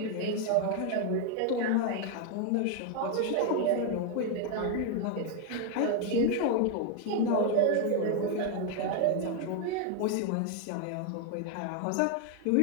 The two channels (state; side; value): different; both; correlation 0.01